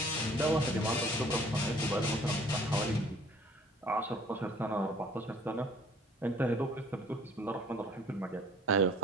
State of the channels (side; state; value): both; normal; correlation 0.54